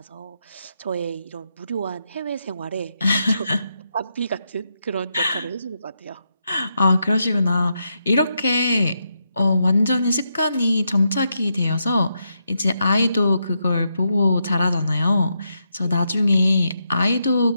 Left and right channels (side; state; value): both; inverted; correlation -0.82